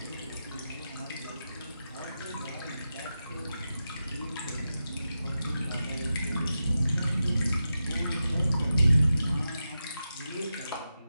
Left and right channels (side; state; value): both; inverted; correlation -0.91